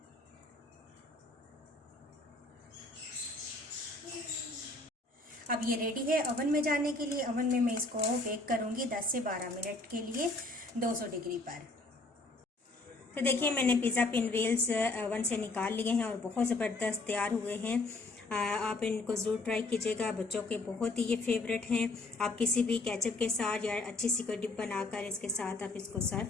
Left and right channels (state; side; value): quieter; right; 3.1 dB